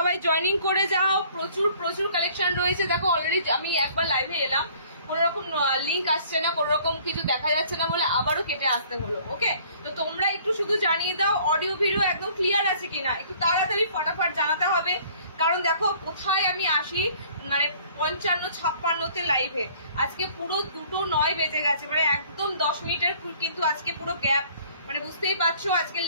জয়েনিং করে যাও। প্রচুর প্রচুর কালেকশন রয়েছে। দেখো অলরেডি আমি একবার লাইভে এলাম, কোন রকম লিঙ্ক আসছে না, কোন রকম কিছু দেখা যাচ্ছে না বলে আবারও কেটে আসতে হলো। ওকে, তো তোমরা একটু শুধু জানিয়ে দাও অডিও ভিডিও একদম ক্লিয়ার আছে কিনা, একটু তাড়াতাড়ি ফটাফট জানাতে হবে। কারণ দেখো কোথায় আমি আসি, মানে 55-56 লাইভে, আজকে পুরো 2:09 বেজে গেছে, মানে একদম 10 মিনিটের কিন্তু আজকে পুরো গ্যাপ, মানে বুঝতেই পারছো আজকে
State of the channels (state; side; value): inverted; both; correlation -0.55